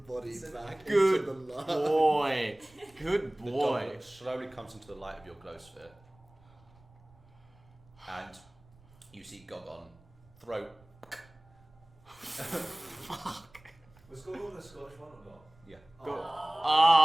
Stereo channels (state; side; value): noise; right; rumble, 27 dB below the sound